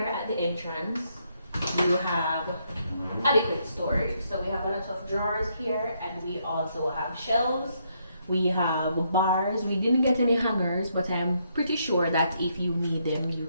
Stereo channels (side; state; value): both; inverted; correlation -0.75